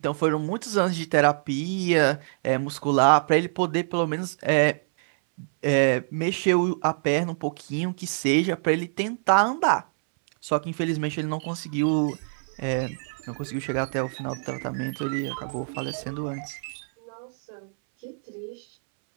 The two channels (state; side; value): silent; left; 61 dB below the other